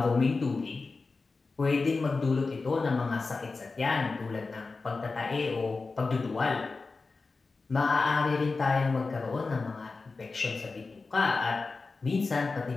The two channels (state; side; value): quieter; right; 4.0 dB